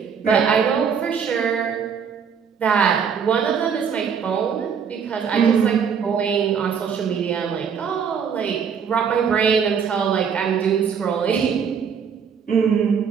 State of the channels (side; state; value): left; quieter; 6.9 dB